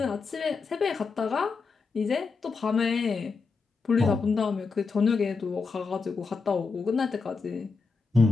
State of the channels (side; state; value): right; quieter; 4.6 dB